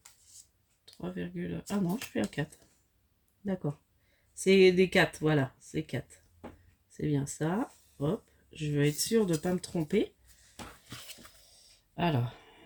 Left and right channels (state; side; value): identical; both; correlation 1.00